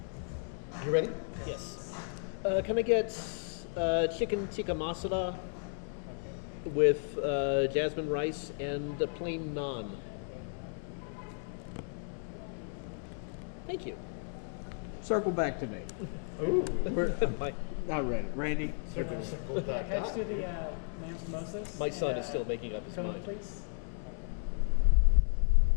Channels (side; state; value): right; silent; 55 dB below the other